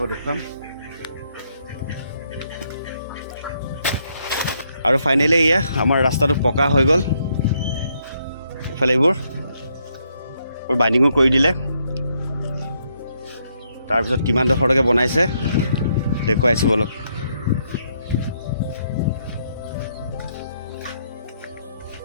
দেখুৱাম আৰু ফাইনেলি এয়া আমাৰ ৰাস্তাটো পকা হৈ গ'ল ইফালে এইবোৰ বাইণ্ডিঙো কৰি দিলে তাৰপিছত কিমান ডোখৰলৈকে বনাইছে দেখুৱাইছো বলক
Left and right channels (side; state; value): both; inverted; correlation -0.75